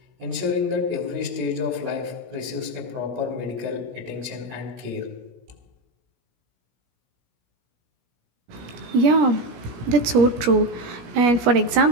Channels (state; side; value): late; left; 17 ms